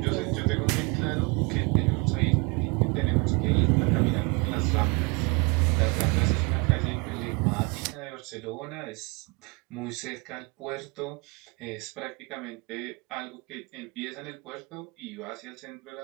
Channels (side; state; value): left; quieter; 29.9 dB